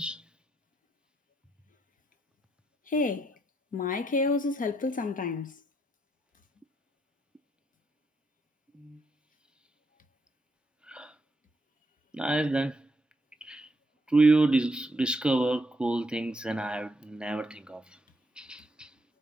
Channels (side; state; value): both; normal; correlation 0.76